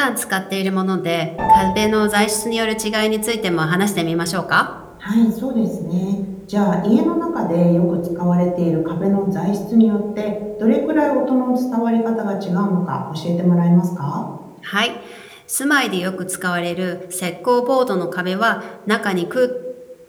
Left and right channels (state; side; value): identical; both; correlation 1.00